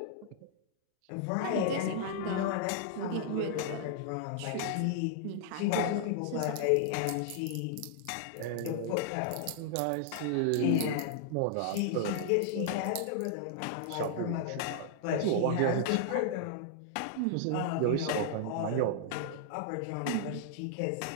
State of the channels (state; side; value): different; both; correlation -0.01